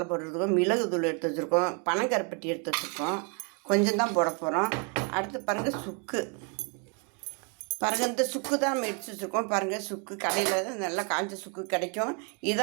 பவுடர் எடுத்துருக்கோம், மிளகு தூள் எடுத்து வச்சுருக்கோம், பனங்கருப்பட்டி எடுத்து வச்சுருக்கோம். கொஞ்சம் தான் போட போகிறோம். அடுத்து பாருங்கள், சுக்கு. பாருங்கள், இந்த சுக்கு தான் நம்ம எடுத்து வச்சுருக்கோம். பாருங்கள், சுக்கு கடையில் நல்லா காஞ்ச சுக்கு கிடைக்கும்.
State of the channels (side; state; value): left; quieter; 36.7 dB